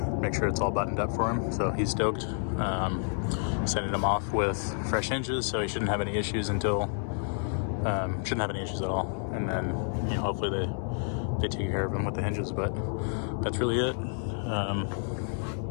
make sure it's all buttoned up for him. So he's stoked. Sending him off with fresh hinges, so he shouldn't have any issues until shouldn't have any issues at all. And then hopefully they take care of him with the hinges. But that's really it.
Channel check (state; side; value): silent; right; 58 dB below the other